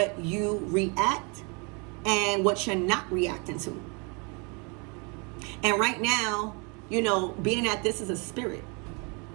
you react and what you're not reacting to. And right now, being that this is a spirit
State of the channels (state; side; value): quieter; left; 32.3 dB